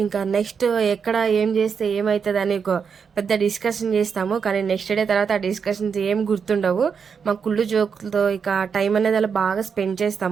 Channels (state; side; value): quieter; left; 6.3 dB